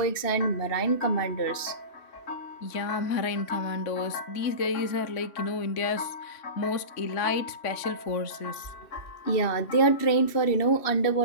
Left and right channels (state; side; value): late; right; 2.7 ms